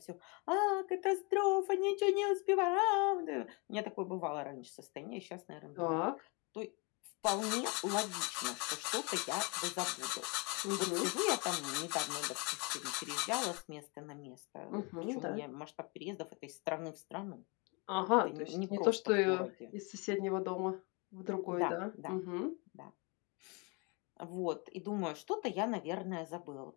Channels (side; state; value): right; quieter; 30.8 dB